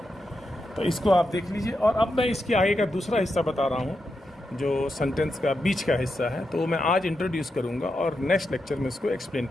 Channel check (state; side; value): normal; both; correlation 0.86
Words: तो इसको आप देख लीजिए। और अब मैं इसके आगे का दूसरा हिस्सा बता रहा हूँ, जो सेंटेंस का बीच का हिस्सा है, तो मैं आज इंट्रोड्यूस करूँगा और नेक्स्ट लेक्चर में इसको एक्सप्लेन